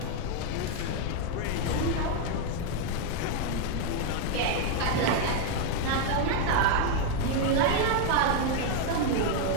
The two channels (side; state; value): both; different; correlation 0.00